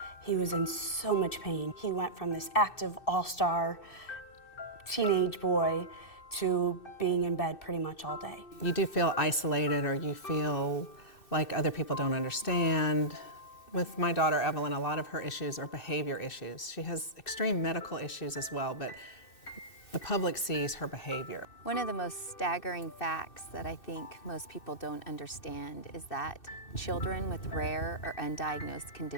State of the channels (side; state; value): right; late; 2.6 ms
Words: He was in so much pain. He went from this active all-star teenage boy to being in bed pretty much all day. You do feel isolated, or you feel like other people don't understand. With my daughter Evelyn, a lot of her issues are behavior issues. She has extreme medical issues as well, but the public sees her behavior. One of the most staggering facts that I think most people don't understand is that children with rare or undiagnosed